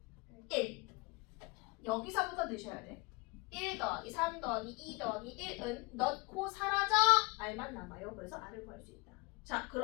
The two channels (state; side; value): quieter; right; 25.9 dB